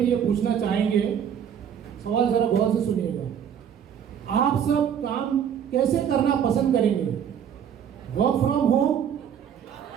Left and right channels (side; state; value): left; quieter; 8.5 dB